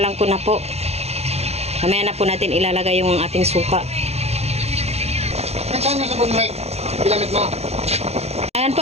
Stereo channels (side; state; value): left; late; 0.31 ms